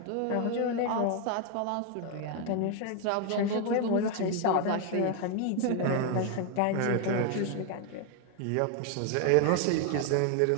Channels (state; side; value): different; both; correlation 0.01